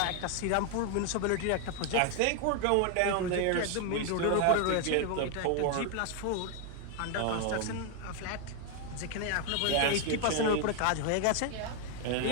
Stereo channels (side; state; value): both; different; correlation 0.01